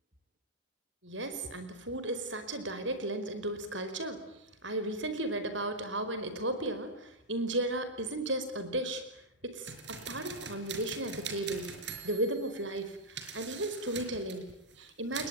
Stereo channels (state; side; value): normal; both; correlation -0.08